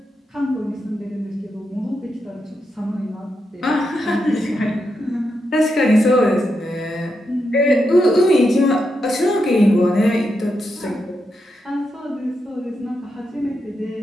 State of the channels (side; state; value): both; normal; correlation 0.84